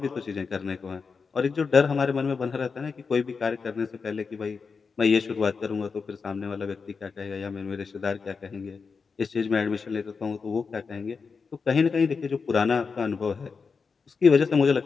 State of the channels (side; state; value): right; quieter; 5.2 dB